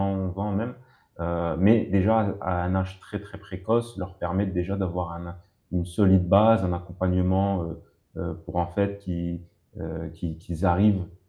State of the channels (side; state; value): both; identical; correlation 1.00